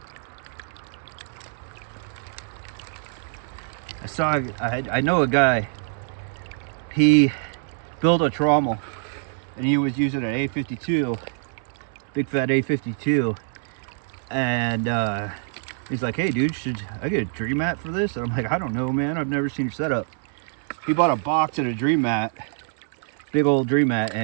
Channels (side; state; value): left; silent; 62 dB below the other